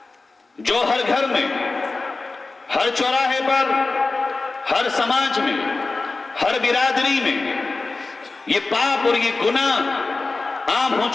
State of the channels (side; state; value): right; quieter; 3.6 dB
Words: جو ہر گھر میں، ہر چوراہے پر، ہر سماج میں، ہر برادری میں یہ پاپ اور یہ گناہ عام ہو